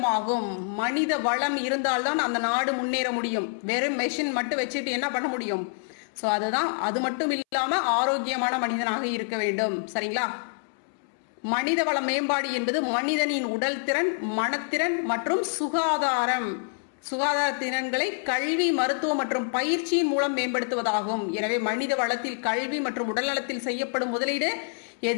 மனித வளம் இருந்தால்தான் அந்த நாடு முன்னேற முடியும். வெறும் மெஷின் மட்டும் வச்சுட்டு என்ன பண்ண முடியும்? சோ அதுதான். அது மட்டும் இல்லாம ஆரோக்கியமான மனிதனாக இருக்க வேண்டும். சரிங்களா? மனித வள மேம்பாடு என்பது மனிதனின் உடல் திறன், மனத்திறன் மற்றும் சுகாதார திறன்களை கல்வி, மருத்துவம் மற்றும் பயிற்சியின் மூலம் மேம்படுத்துவதாகும். எனவே மனித வளத்தில் கல்வி மற்றும் உடல் நலத்தில் செய்யப்படும் முதலீடு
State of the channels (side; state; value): right; silent; 60 dB below the other